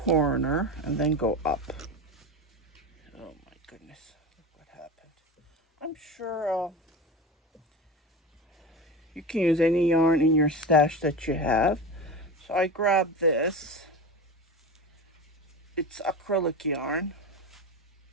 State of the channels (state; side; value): normal; both; correlation 0.27